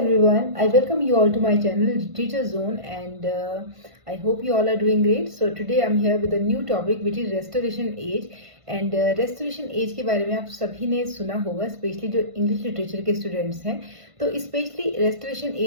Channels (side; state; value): left; late; 1.5 ms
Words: I welcome you all to my channel Literature Zone and I hope you all are doing great. So today I'm here with a new topic which is restoration age and restoration age के बारे में आप सभी ने सुना होगा, specially जो English literature के स्टूडेंट्स हैं. तो स्पेशली रेस्टोरेशन